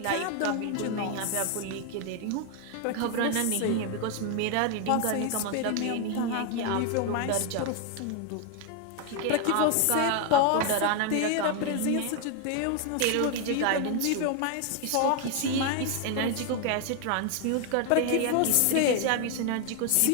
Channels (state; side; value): different; both; correlation 0.01